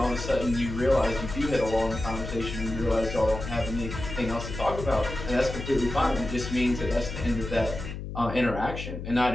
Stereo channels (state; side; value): noise; left; hum, 8 dB below the sound